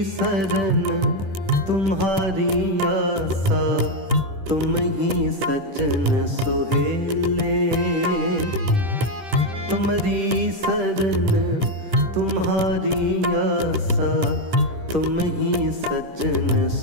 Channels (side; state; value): left; late; 10 ms